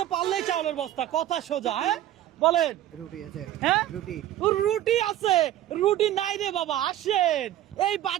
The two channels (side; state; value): left; quieter; 12.9 dB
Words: পারলেই চাউলের বস্তা, কথা সোজা। হ্যাঁ বলেন। রুটি আছে। হ্যাঁ রুটি। রুটি আছে। রুটি নাই রে বাবা, আসেন। এই